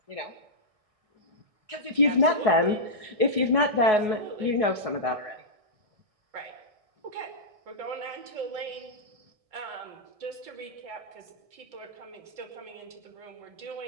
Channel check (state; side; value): late; left; 1.6 ms